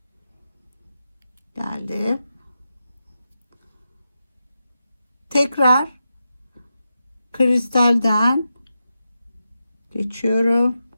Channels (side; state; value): both; inverted; correlation -0.89